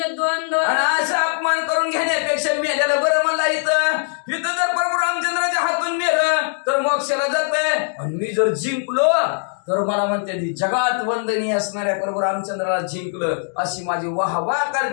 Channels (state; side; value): silent; right; digital silence